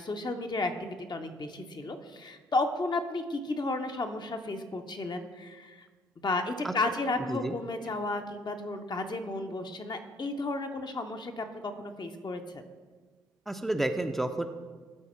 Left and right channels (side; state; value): both; normal; correlation 0.64